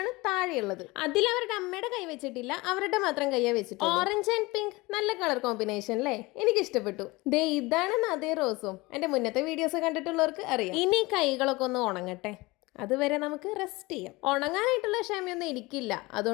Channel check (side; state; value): right; quieter; 22.6 dB